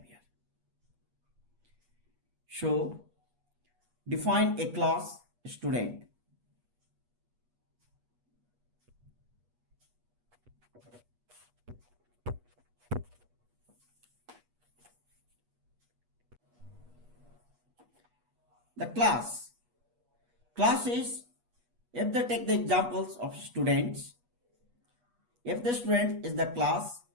So, define a class student. The class is, if they take the examples of students, if the student is the class,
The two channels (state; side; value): late; left; 8.3 ms